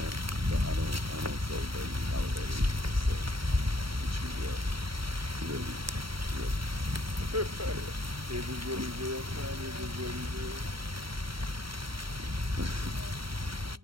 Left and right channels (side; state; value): left; late; 0.74 ms